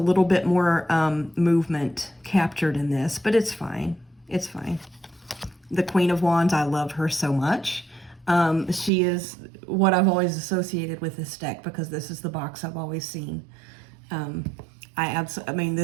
bit more movement captured in this, but it's fine. It's fine. The Queen of Wands, I love her so much. She is what I've always associated with this deck because this is the box I've always seen. I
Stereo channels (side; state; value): left; drops out; at 8.9 s